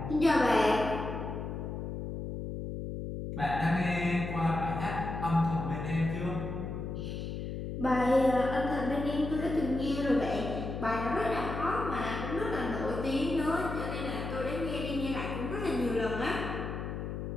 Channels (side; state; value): left; noise; hum, 5 dB below the sound